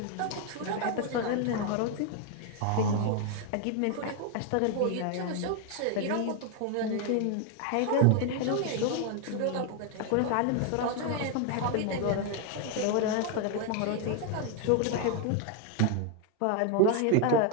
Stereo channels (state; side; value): different; both; correlation 0.01